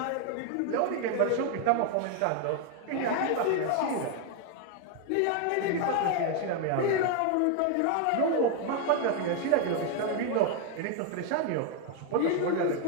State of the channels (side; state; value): both; different; correlation 0.01